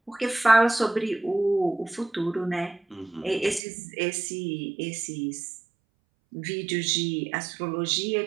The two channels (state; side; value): drops out; left; at 3.6 s